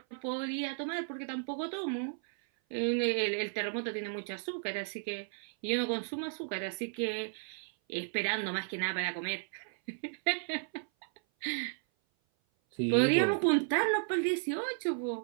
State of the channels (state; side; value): silent; left; 55 dB below the other